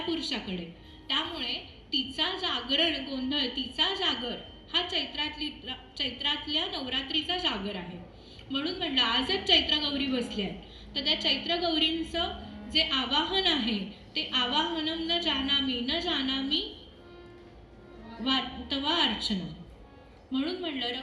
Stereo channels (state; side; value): identical; both; correlation 1.00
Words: पुरुषाकडे. त्यामुळे तिचा जागरण गोंधळ, तिचा जागर हा चैत्रातल्या नवरात्रीचा जागर आहे. म्हणून म्हणलं आजच चैत्र गौरी बसल्या आहेत, तर त्या चैत्र गौरींचं जे आवाहन आहे ते आवाहनम न जानामी तवा अर्चना. म्हणून म्हणलं